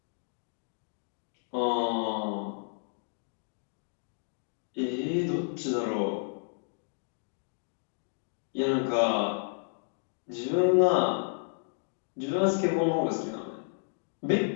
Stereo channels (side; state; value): right; silent; digital silence